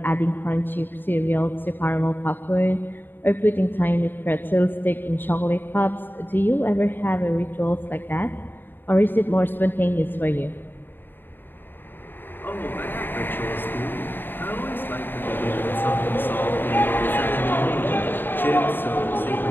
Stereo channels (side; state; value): right; late; 0.095 ms